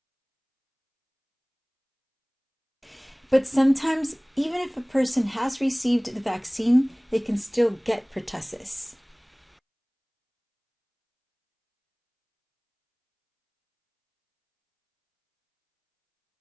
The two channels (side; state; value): both; identical; correlation 1.00